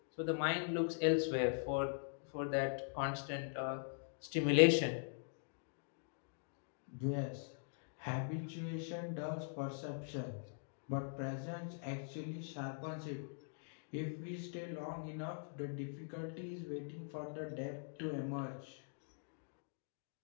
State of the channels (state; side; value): silent; right; digital silence